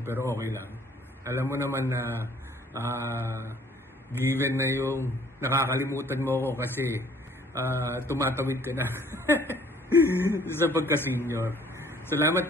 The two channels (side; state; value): both; normal; correlation 0.57